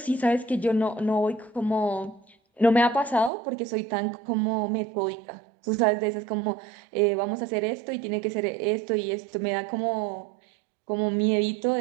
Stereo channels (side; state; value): left; drops out; at 3.3 s